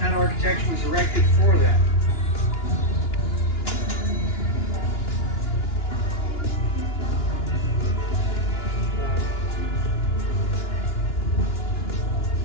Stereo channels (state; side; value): late; right; 2.9 ms